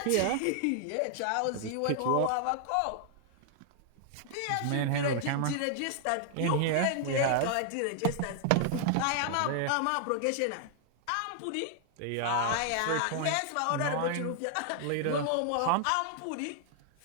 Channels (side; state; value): both; different; correlation 0.00